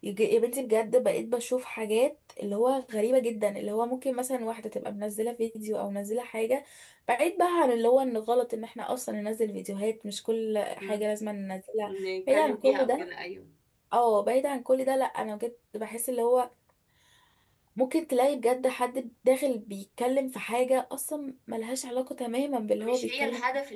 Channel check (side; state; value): both; identical; correlation 1.00